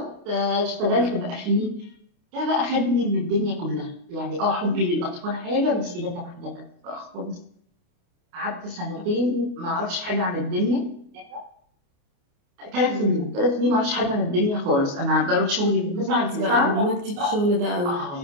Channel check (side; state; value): left; late; 29 ms